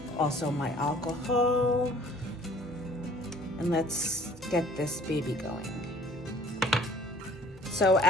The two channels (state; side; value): normal; both; correlation 0.51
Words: Also my alcohol. And let's get this baby going. So